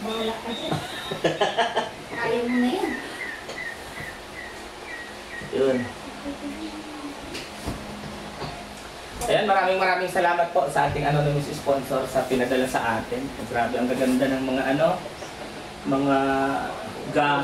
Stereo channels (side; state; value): both; identical; correlation 1.00